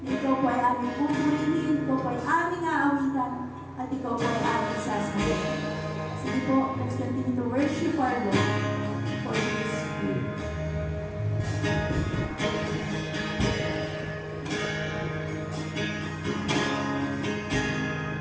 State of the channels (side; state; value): both; identical; correlation 1.00